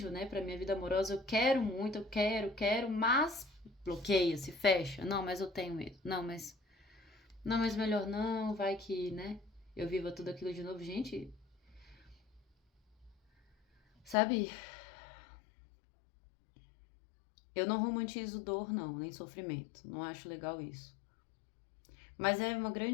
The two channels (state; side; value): drops out; right; at 14.2 s